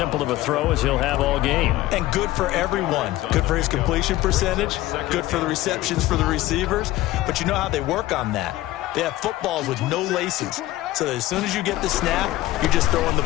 of a throw as he'll have all game. And good for everyone. Good for his completion percentage. Good for the receptions for the receivers. But you know how they work on that. They have footballs with no laces. So that as soon as you get the snap, you're just throwing the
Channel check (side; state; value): right; quieter; 16.3 dB